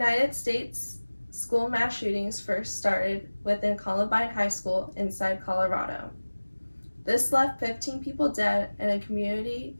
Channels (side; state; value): both; inverted; correlation -1.00